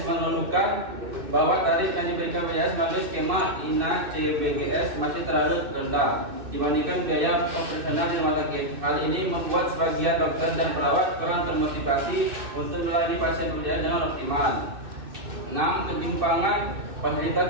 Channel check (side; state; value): left; late; 2.6 ms